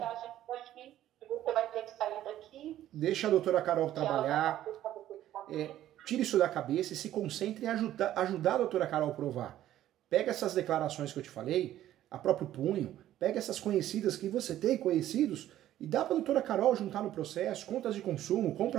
Você vai ter que sair daqui. Deixa a doutora Carol trabalhar. Tire isso da cabeça e se concentre em ajudar a doutora Carol a provar. Pega essas declarações que eu te falei, a próprio punho, pega essas conhecidas que você tem, conhecidos, e dá para a doutora Carol juntar no processo, contas de consumo,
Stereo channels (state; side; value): quieter; left; 12.8 dB